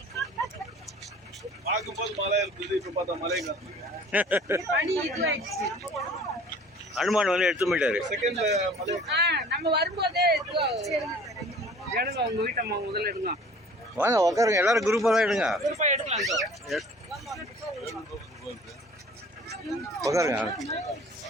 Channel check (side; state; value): both; normal; correlation 0.48